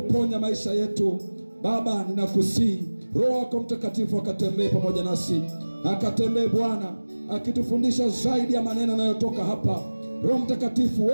maisha yetu. Baba, ninakusihi Roho wako Mtakatifu akatembee pamoja nasi, akatembee Bwana, akitufundisha zaidi ya maneno yanayotoka hapa. Roho Mtakatifu,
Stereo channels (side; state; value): both; inverted; correlation -1.00